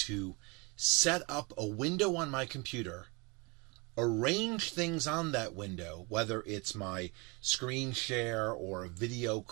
set up a window on my computer, arrange things on that window, whether it's my screen share or a video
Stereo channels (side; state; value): left; quieter; 28.8 dB